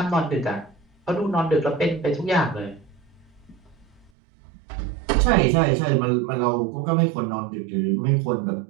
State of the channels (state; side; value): drops out; left; at 4.1 s